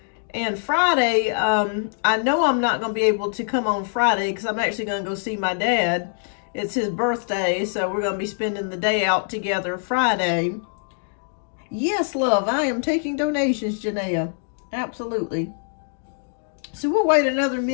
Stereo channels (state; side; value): silent; right; digital silence